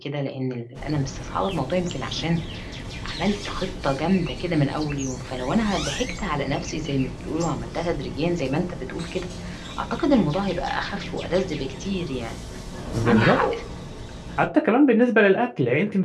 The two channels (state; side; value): identical; both; correlation 1.00